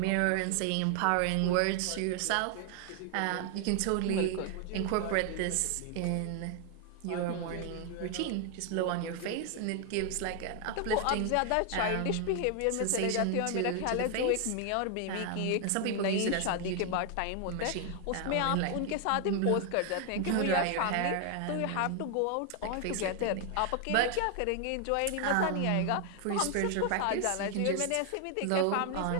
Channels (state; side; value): different; both; correlation 0.00